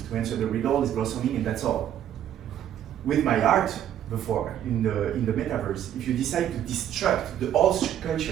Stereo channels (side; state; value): left; quieter; 10.7 dB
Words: answer the riddle, it's blossoming, and that's all. With my art before, in the metaverse, if you decide to destruct the whole